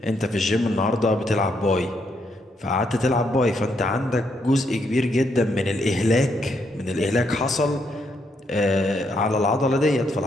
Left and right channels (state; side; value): normal; both; correlation 0.76